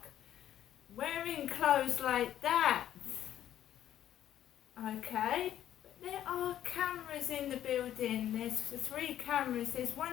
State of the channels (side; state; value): right; quieter; 11.3 dB